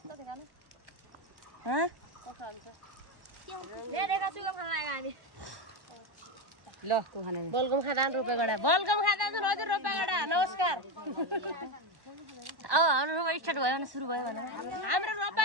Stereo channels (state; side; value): late; left; 1.1 ms